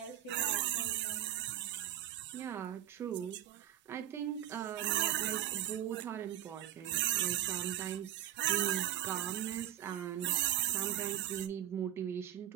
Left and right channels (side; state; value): left; quieter; 12.2 dB